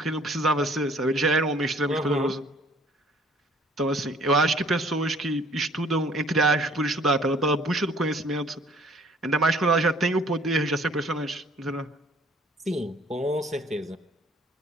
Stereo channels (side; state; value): both; normal; correlation 0.56